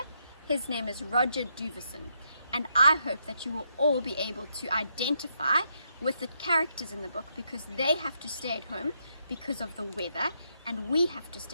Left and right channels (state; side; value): inverted; both; correlation -0.78